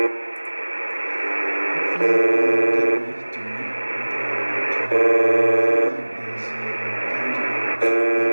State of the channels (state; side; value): inverted; both; correlation -1.00